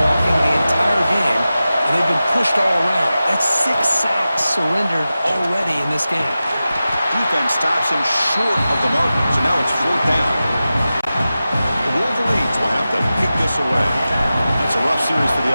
the entire game, and they've been pushed all around. That's 6 sacks surrendered already in this game. Defense stops him short of the mark, so now it's 4th down. The Wolverines will have to kick this away. That's a rough series for the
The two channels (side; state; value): both; inverted; correlation -0.94